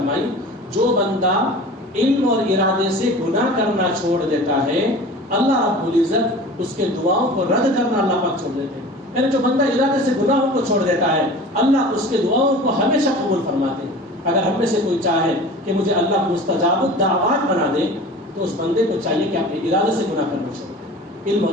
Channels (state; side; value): normal; both; correlation 0.39